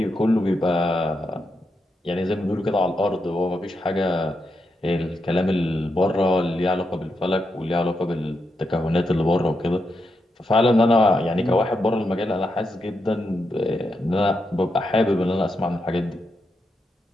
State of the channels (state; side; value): normal; both; correlation 0.84